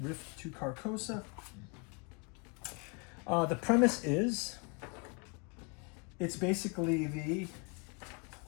Rift to Carcosa. The premise is, it's basically the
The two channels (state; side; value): quieter; right; 32.8 dB